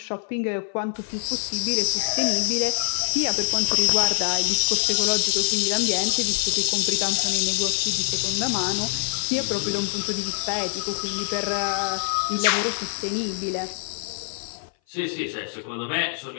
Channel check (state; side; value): silent; right; 59 dB below the other